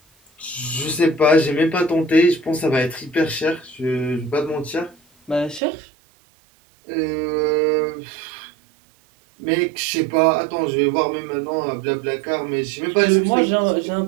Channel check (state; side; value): drops out; left; at 5.6 s